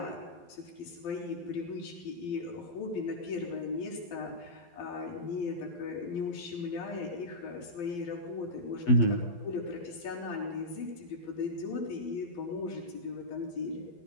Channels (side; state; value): right; late; 12 ms